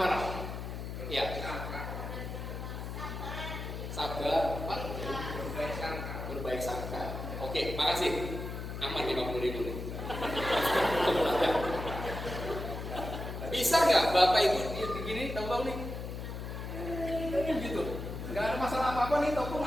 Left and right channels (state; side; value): noise; left; hum, 7 dB below the sound